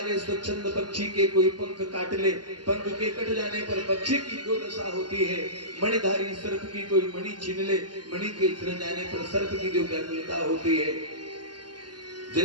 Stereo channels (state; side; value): late; left; 0.70 ms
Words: स्वच्छंद पक्षी के कोई पंख काट ले, पंख के कट जाने पर पक्षी की जो दशा होती है, मणिधारी सर्प की कोई मणि छीन ले, मणि के छिन जाने पर सर्प की जो व्याकुलता होती है,